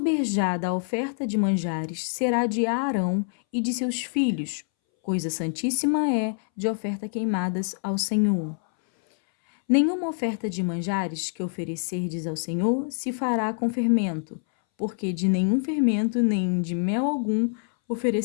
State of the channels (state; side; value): silent; right; 61 dB below the other